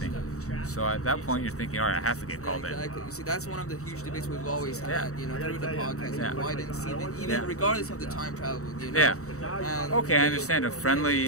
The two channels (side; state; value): right; late; 0.64 ms